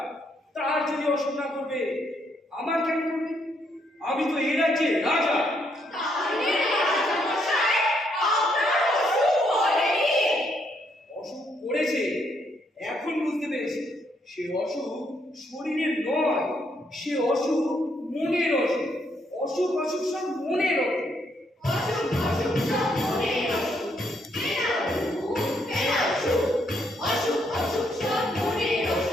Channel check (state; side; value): normal; both; correlation 0.74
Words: তার যদি অসুখ না করবে, আমার কেন করবে? আমি তো এই রাজ্যে রাজা। তাহলে রাজামশাই আপনার অসুখ করেনি? অসুখ করেছে, এখন বুঝতে পেরেছি। সে অসুখ শরীরের নয়, সে অসুখ মনের অসুখ। অসুখ অসুখ সব মনের অসুখ। অসুখ অসুখ সব মনের অসুখ। ফেরাও সুখ, ফেরাও সুখ। অসুখ অসুখ সব মনের